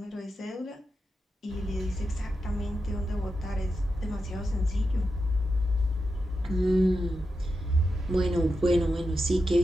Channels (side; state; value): both; normal; correlation 0.88